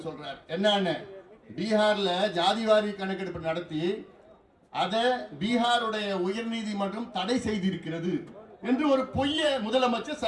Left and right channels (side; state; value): both; identical; correlation 1.00